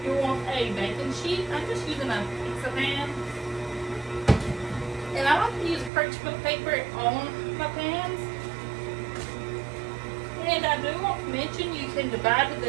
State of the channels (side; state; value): left; drops out; at 5.9 s